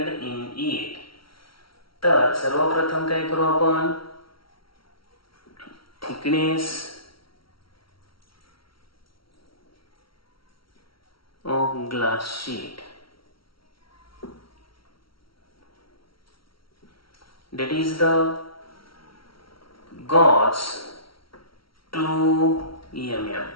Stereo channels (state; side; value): late; right; 0.74 ms